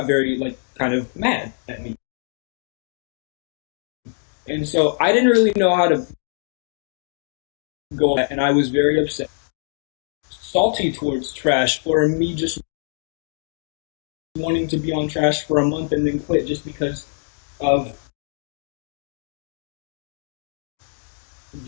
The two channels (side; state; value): right; silent; 61 dB below the other